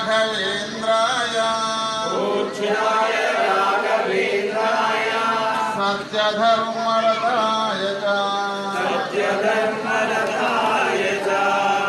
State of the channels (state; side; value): identical; both; correlation 1.00